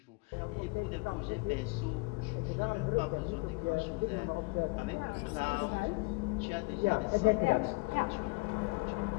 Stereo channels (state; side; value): quieter; right; 27.7 dB